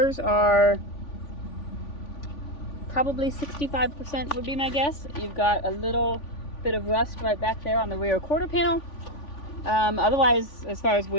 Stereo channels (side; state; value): right; late; 3.5 ms